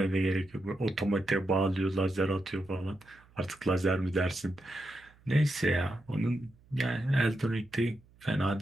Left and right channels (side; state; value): right; noise; hum, 28 dB below the sound